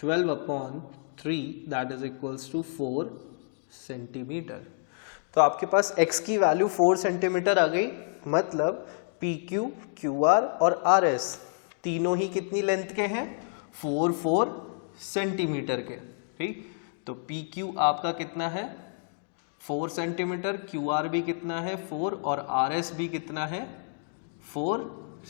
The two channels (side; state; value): right; silent; digital silence